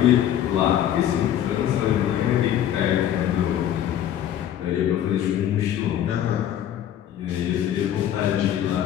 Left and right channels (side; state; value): right; quieter; 10.9 dB